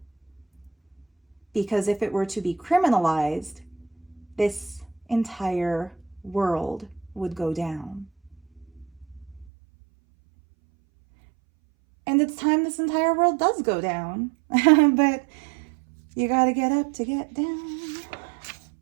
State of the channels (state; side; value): drops out; left; at 9.5 s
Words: Because if it were to be criminalized, this entire world would go down. And it's time this entire world does go down. But you gotta get up to get down.